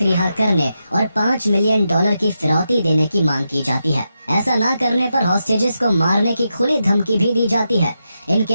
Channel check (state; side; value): inverted; both; correlation -0.87